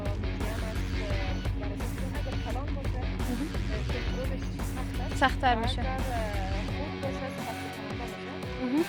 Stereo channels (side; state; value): both; identical; correlation 1.00